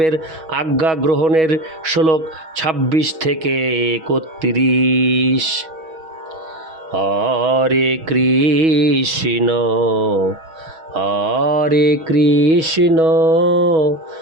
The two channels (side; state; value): left; late; 6.2 ms